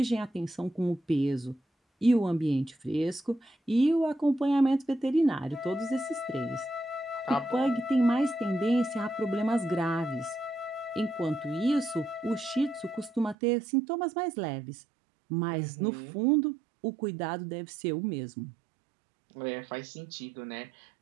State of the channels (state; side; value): drops out; left; at 13.4 s